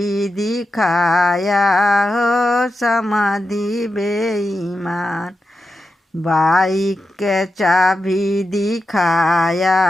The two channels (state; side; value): normal; both; correlation 0.89